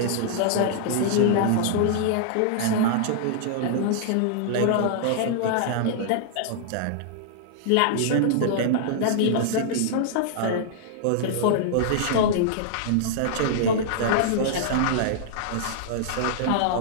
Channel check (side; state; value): both; different; correlation -0.01